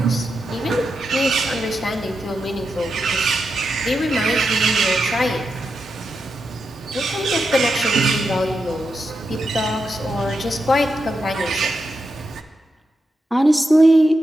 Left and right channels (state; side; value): normal; both; correlation 0.87